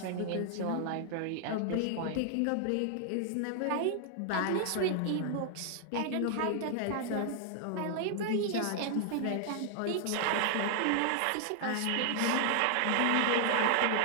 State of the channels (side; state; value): both; different; correlation -0.01